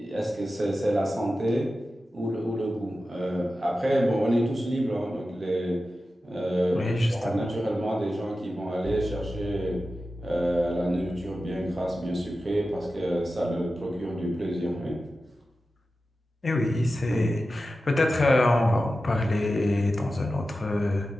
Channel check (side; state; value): both; normal; correlation 0.93